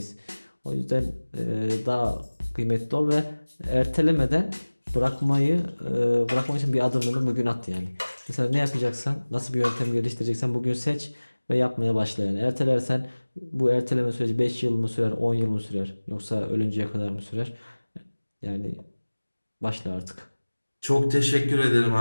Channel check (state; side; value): inverted; both; correlation -1.00